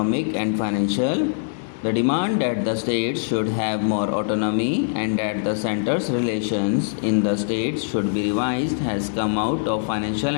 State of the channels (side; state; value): right; silent; digital silence